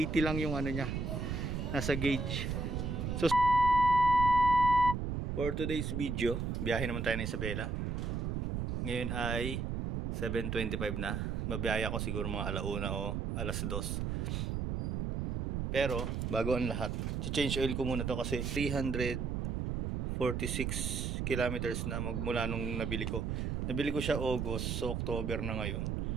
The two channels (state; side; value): noise; right; rumble, 1 dB below the sound